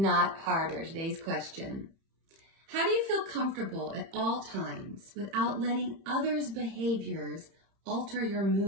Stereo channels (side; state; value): left; late; 30 ms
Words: harder. Today's question. How do you feel comfortable at all times without letting others' behaviors alter your